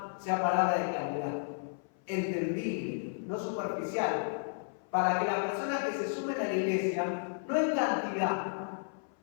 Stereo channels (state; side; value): silent; right; 56 dB below the other